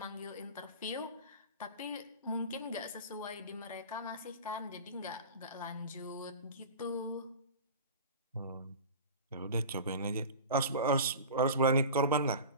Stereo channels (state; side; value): inverted; both; correlation -0.34